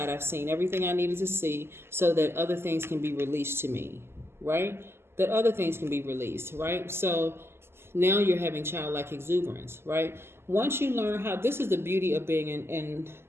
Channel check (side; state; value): left; late; 0.12 ms